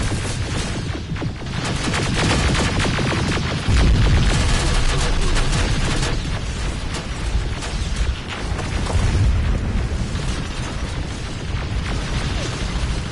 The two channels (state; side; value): identical; both; correlation 1.00